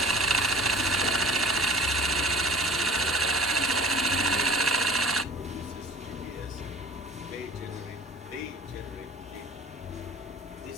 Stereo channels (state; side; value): normal; both; correlation 0.45